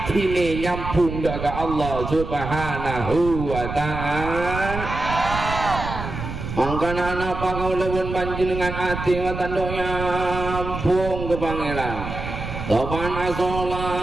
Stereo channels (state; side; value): noise; right; rumble, 7 dB below the sound